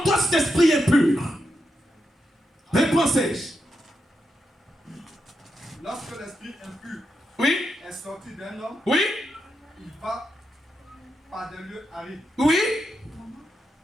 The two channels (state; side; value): normal; both; correlation 0.85